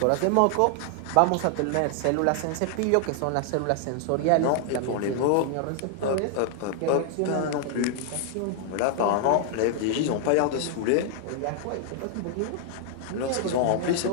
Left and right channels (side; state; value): both; different; correlation 0.00